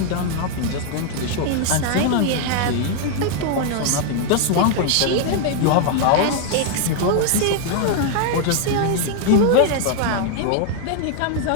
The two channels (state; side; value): different; both; correlation 0.00